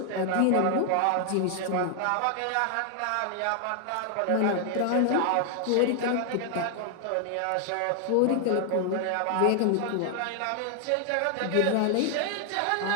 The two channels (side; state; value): both; different; correlation 0.00